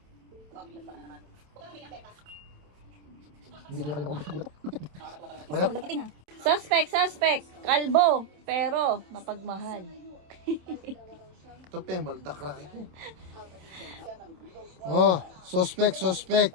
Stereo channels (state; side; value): late; left; 27 ms